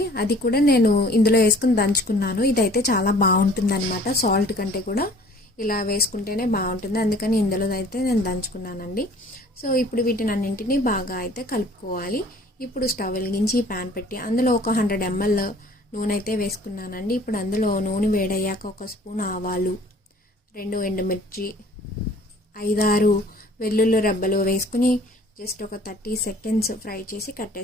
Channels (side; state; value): both; normal; correlation 0.52